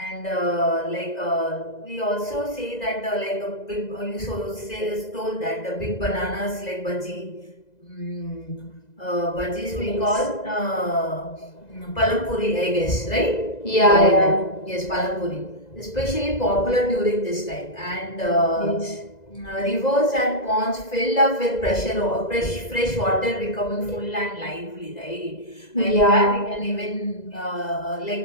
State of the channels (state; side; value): late; right; 2.0 ms